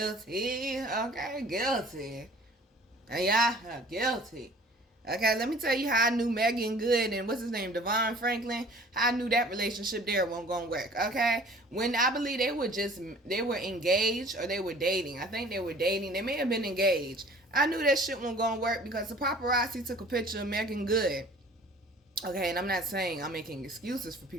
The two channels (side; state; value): both; normal; correlation 0.49